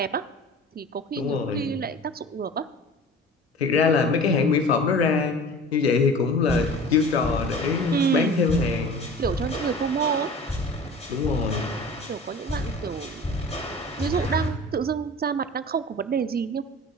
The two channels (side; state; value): both; normal; correlation 0.40